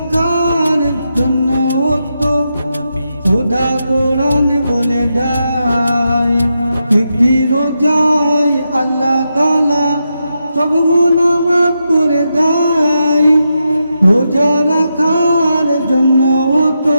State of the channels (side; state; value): both; inverted; correlation -0.86